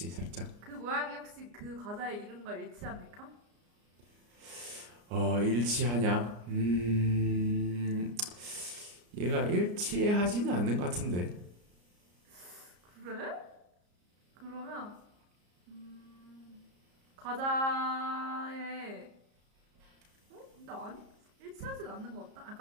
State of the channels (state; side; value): late; left; 34 ms